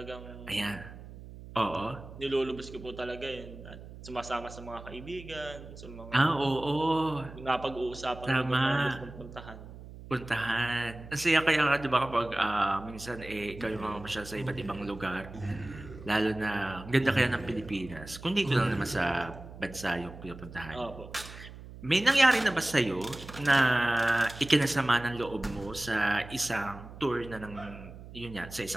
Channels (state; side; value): noise; right; hum, 15 dB below the sound